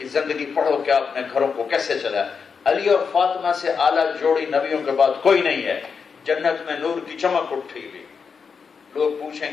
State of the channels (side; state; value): right; quieter; 5.8 dB